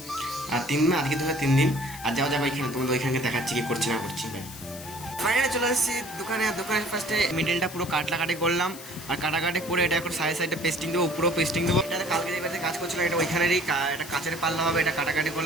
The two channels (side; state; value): left; noise; hiss, 14 dB below the sound